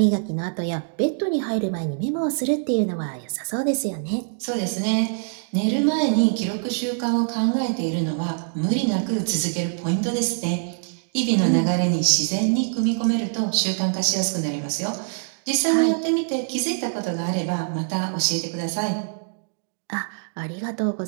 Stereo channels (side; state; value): left; silent; digital silence